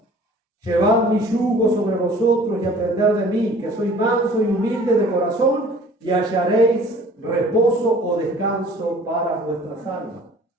Llevad mi yugo sobre vosotros y aprended de mí, que soy manso y humilde de corazón, y hallaréis reposo o descanso para vuestras almas.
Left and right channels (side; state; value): both; normal; correlation 0.50